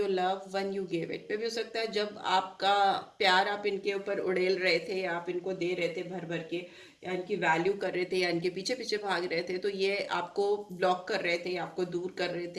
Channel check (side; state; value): both; identical; correlation 1.00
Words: love when you gave it. पे भी हो सकता है जब आपका प्यार आप इनके ऊपर उड़ेल रहे थे, या आप इनको दे रहे थे भर भर के, या इनकी वैल्यू कर रहे थे, या इनके पीछे पीछे भाग रहे थे, तो ये आपको ब्लॉक कर रहे थे, आपको दूर कर रहे